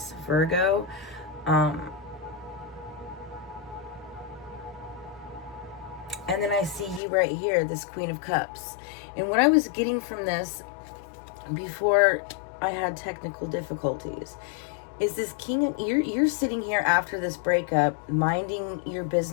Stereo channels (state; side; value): drops out; right; at 7.0 s